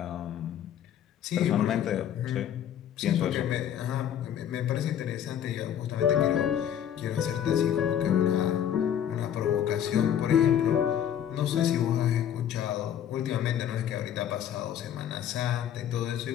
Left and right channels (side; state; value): right; quieter; 9.8 dB